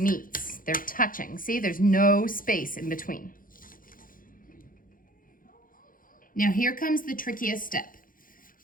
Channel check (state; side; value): late; right; 0.40 ms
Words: they're touching. See, there's no space in between. Now here comes the trickiest step.